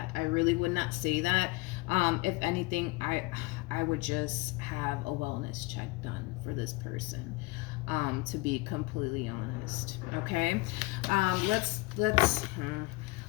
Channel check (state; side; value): quieter; right; 23.2 dB